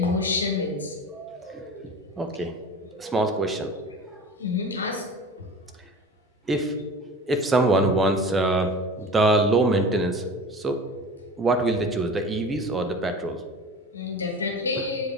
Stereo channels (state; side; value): normal; both; correlation 0.36